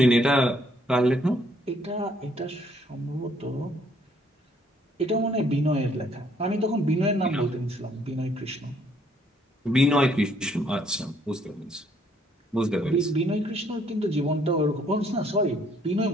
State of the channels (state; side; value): normal; both; correlation 0.65